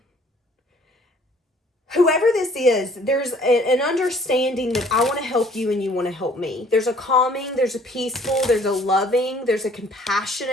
Whoever this is, there's an understanding that I want to help you and you want to help me. There's a calming, there's a peaceful, there's a loving, there's a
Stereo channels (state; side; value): normal; both; correlation 0.57